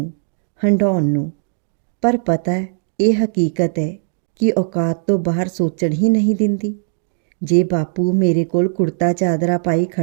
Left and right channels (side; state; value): left; silent; digital silence